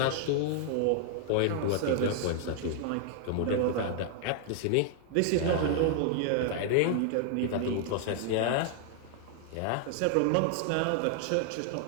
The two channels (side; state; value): both; different; correlation 0.00